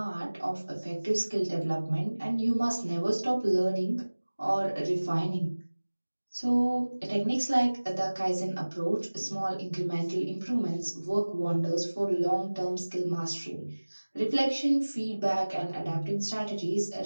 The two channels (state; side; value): inverted; both; correlation -1.00